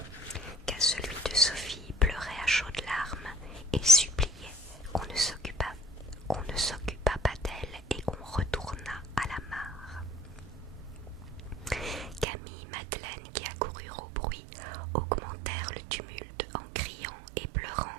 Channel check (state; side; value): drops out; left; at 12.2 s